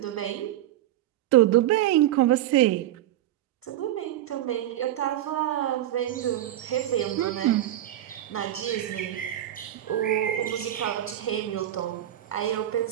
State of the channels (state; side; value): quieter; left; 13.2 dB